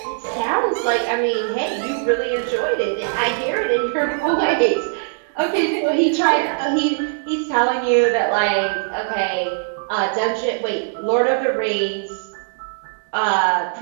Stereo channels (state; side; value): silent; left; digital silence